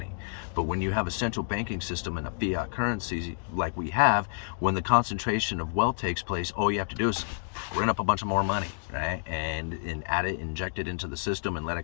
But when you have a central banking system and a fiat currency like we have, when the concentration of wealth takes place, all you have to do is print up a bunch of more money, right? And add it, inject it into the system, and let it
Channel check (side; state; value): right; silent; digital silence